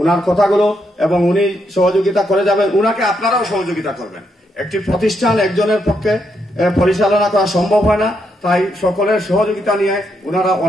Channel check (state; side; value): normal; both; correlation 0.79